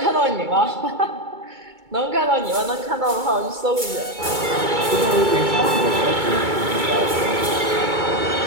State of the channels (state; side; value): late; left; 2.2 ms